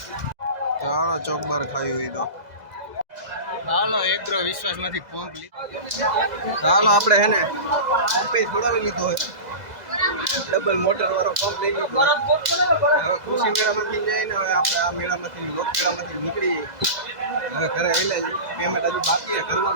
ચાલો ચોકબાર ખાવી હોય તો ચાલો એગ્રો વિશ્વાસમાંથી પંપ લીધો. ચાલો આપણે હે ને પંપે છોડાવી લીધો હોય ડબલ મોટર વાળો પંપ લઈ લીધો. હવે ખુશી મેળામાંથી જાય ને હવે આપણે આ મેળામાંથી લોક મેળામાંથી નીકળી હવે ઘરે વહેલા પેમેન્ટ હજુ બાકી છે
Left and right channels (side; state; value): left; late; 2.0 ms